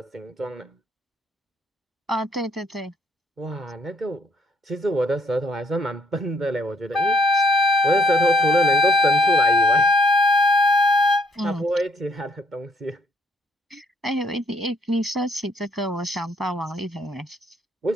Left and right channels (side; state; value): both; normal; correlation 0.67